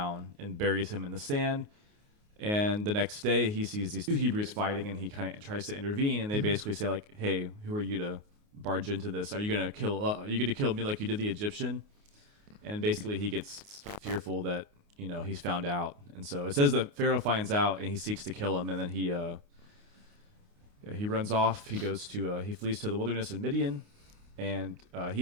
and buries him in the sand. And the next day he sees these two Hebrews fighting, and he kind of tries to intervene. And they basically say, like, hey, who are you to barge into this? Are you going to kill me like you did the Egyptian? And basically he gets fearful that, he's found out. And so it says that Pharaoh finds out and he seeks to kill him. And then he runs off. He flees to the wilderness in Midian, and he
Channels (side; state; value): left; late; 29 ms